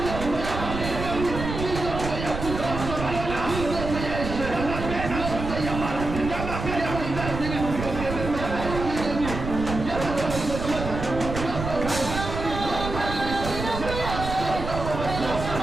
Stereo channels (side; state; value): right; noise; rumble, 6 dB below the sound